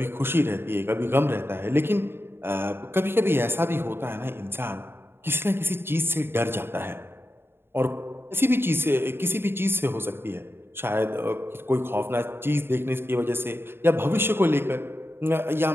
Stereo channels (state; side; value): late; left; 0.11 ms